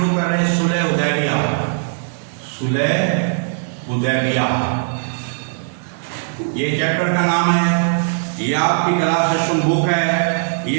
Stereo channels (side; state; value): left; silent; digital silence